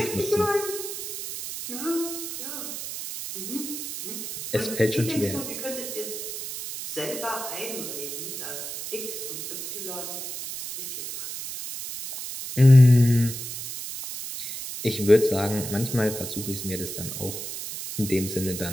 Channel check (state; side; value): noise; right; hiss, 7 dB below the sound